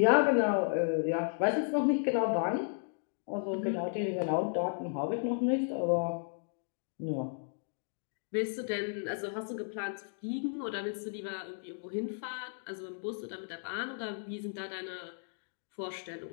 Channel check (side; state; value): right; silent; digital silence